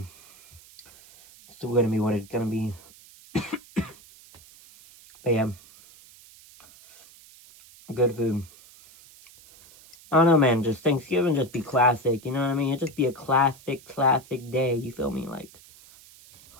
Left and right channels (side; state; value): right; noise; hiss, 23 dB below the sound